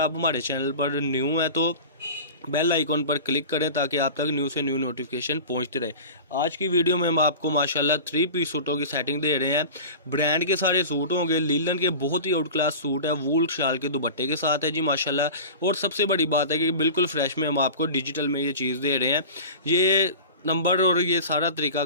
हमारे चैनल पर न्यू हैं तो बेल आइकॉन पर क्लिक करें ताकि आप तक न्यू से न्यू नोटिफिकेशन पहुंचते रहे। आज की वीडियो में हम आपको माशाल्लाह 3 पीस सूटों की सेटिंग दे रहे हैं। ब्रांड के सारे सूट होंगे, लीलन के बहुत ही आउट क्लास सूट है, वूल शाल के दुपट्टे के साथ है जी माशाल्लाह। और सबसे बड़ी बात है कि बिल्कुल फ्रेश में हम आपको डिजिटल में ये चीज़ दे रहे हैं। ये नंबर और ये सारा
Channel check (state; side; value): inverted; both; correlation -0.35